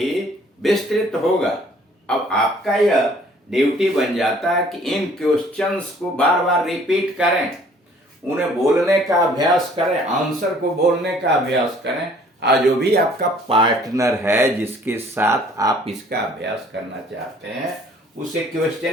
विस्तृत होगा। अब आपका यह ड्यूटी बन जाता है कि इन क्वेश्चंस को बार बार रिपीट करें, उन्हें बोलने का अभ्यास करें, आंसर को बोलने का अभ्यास करें। और जो भी आपका पार्टनर है जिसके साथ आप इसका अभ्यास करना चाहते हैं उसे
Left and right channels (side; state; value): both; normal; correlation 0.57